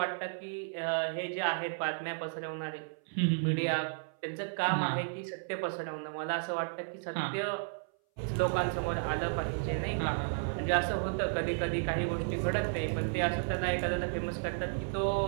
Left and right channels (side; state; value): left; silent; 56 dB below the other